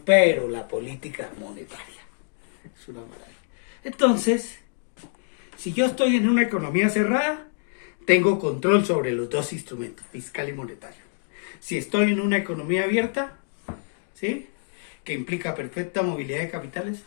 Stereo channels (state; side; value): silent; right; digital silence